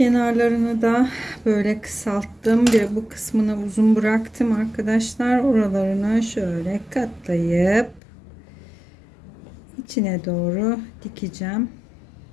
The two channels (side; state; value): right; drops out; at 8.0 s